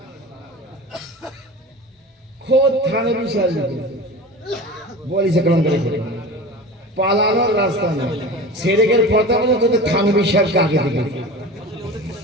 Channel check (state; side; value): normal; both; correlation 0.33